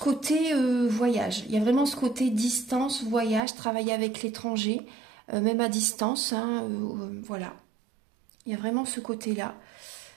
voyage, il y a vraiment ce côté distance, voyage, travailler avec l'étranger, même à distance, hein, voilà. Il y a vraiment ce côté-là.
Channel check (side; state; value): left; drops out; at 3.4 s